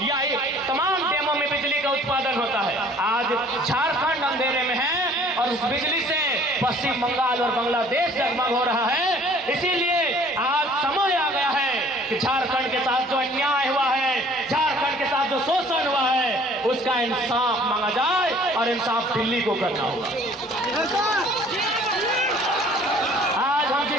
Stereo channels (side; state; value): both; normal; correlation 0.54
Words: या तमाम डैमों में बिजली का उत्पादन होता है। आज झारखंड अंधेरे में है और उस बिजली से पश्चिम बंगाल और बांग्लादेश जगमग हो रहा है। इसीलिए आज समय आ गया है कि झारखंड के साथ जो अन्याय हुआ है, झारखंड के साथ जो शोषण हुआ है, उसका इंसाफ मांगा जाए और इंसाफ दिल्ली को करना होगा। आज हम